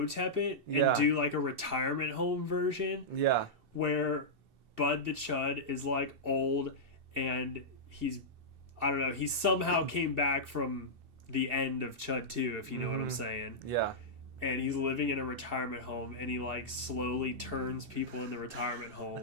it and do like a retirement home version. Yeah. Where Bud the Chud is like old and he somehow came back from the end of Chud 2, if you know what I'm saying. Yeah. And he's living in a retirement home and he like slowly turns people in the retirement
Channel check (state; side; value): late; left; 2.7 ms